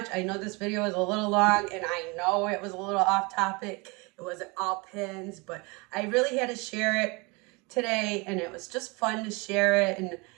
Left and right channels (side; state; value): left; quieter; 27.7 dB